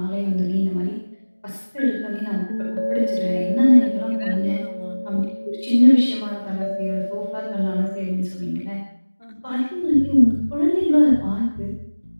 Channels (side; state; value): both; inverted; correlation -1.00